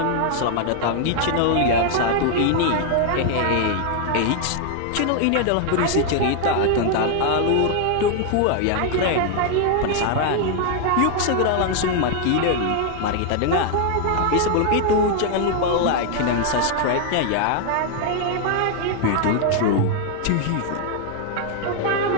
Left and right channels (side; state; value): both; different; correlation 0.00